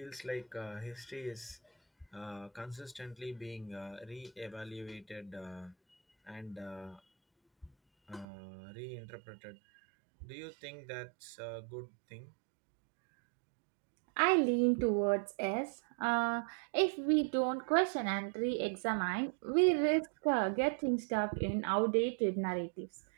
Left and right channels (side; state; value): left; drops out; at 8.2 s